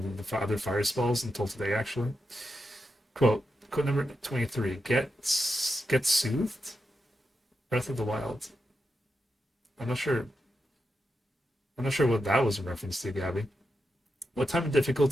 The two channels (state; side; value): normal; both; correlation 0.87